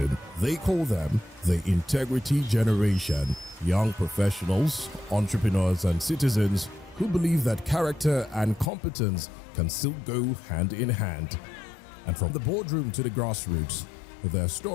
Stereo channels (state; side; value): drops out; right; at 8.7 s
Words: They call them the Integrity Generation. Young professionals, entrepreneurs, and citizens who believe that character and competence can still go hand in hand. And from the boardroom to the grassroots, their